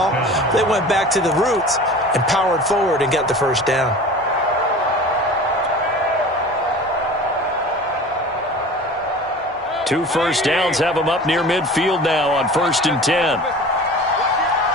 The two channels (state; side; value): normal; both; correlation 0.39